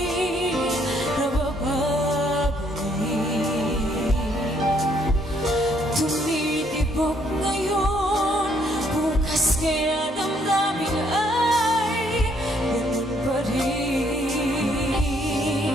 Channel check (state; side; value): normal; both; correlation 0.68